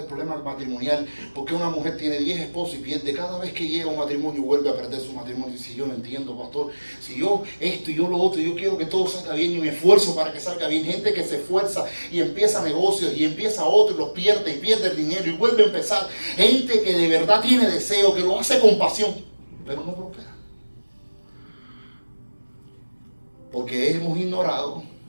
problema matrimonial. Porque una mujer tiene 10 esposos y pierde. Cada vez que llega a un matrimonio vuelve a perder su matrimonio. Y si yo no entiendo, pastor, si yo esto y yo lo otro, yo quiero que todo salga bien y me esfuerzo para que salga bien. Gente que se esfuerza y empieza negocios y empieza otro y los pierde y pierde el dinero y vuelve a empezar. Gente que de verdad tiene deseo, que lo hace con pasión, pero no prospera. Porque hemos ignorado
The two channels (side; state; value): both; inverted; correlation -1.00